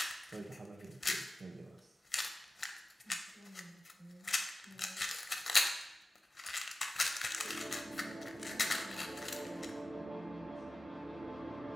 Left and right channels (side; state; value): both; normal; correlation 0.96